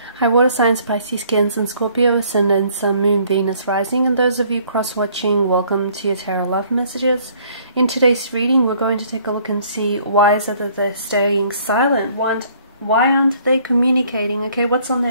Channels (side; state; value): both; inverted; correlation -0.60